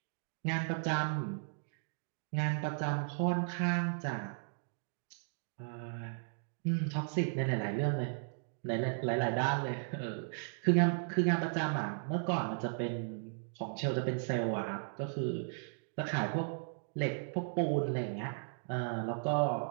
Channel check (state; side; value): silent; left; digital silence